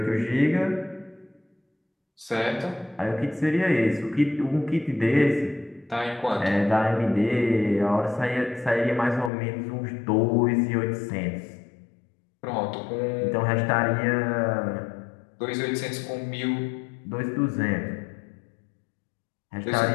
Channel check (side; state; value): right; drops out; at 9.3 s